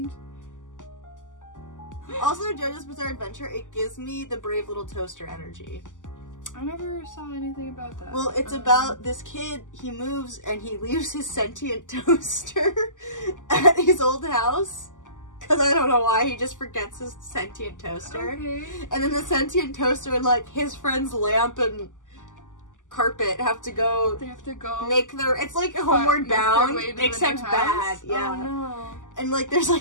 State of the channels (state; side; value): late; right; 0.87 ms